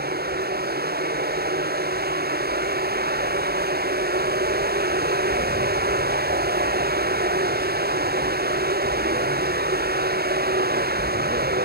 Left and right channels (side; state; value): left; late; 0.46 ms